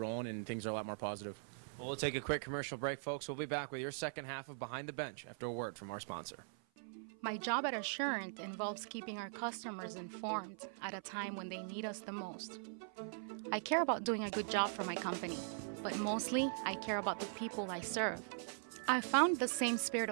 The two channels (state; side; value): silent; left; 50 dB below the other